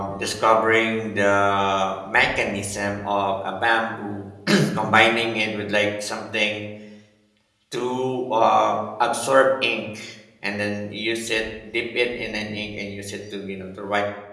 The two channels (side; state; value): both; identical; correlation 1.00